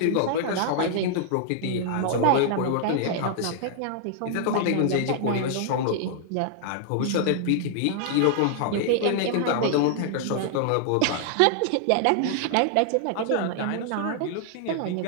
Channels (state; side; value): different; both; correlation -0.01